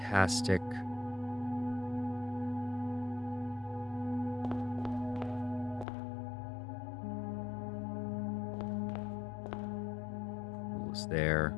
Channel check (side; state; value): right; drops out; at 5.9 s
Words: Pool is there.